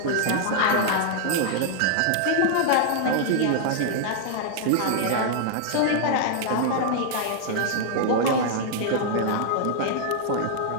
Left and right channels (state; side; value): different; both; correlation -0.01